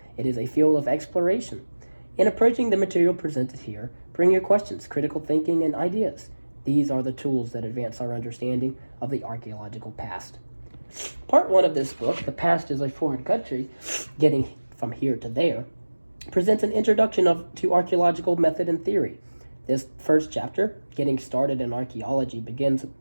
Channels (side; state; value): both; inverted; correlation -1.00